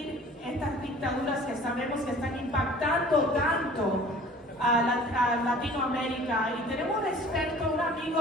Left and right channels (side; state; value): both; normal; correlation 0.47